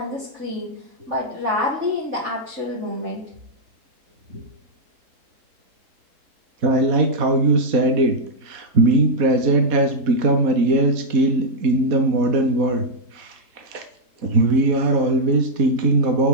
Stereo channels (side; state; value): left; late; 3.7 ms